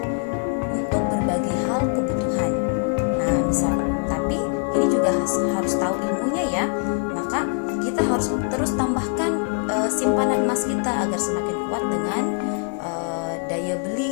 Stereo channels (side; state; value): right; quieter; 39.6 dB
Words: untuk berbagai hal kebutuhan. Nah, misalkan, tapi ini juga harus tahu ilmunya ya. Maka kita harus terus tambahkan simpanan emas kita agar semakin kuat dengan daya